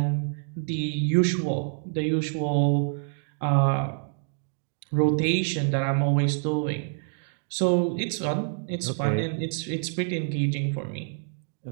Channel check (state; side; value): silent; left; 60 dB below the other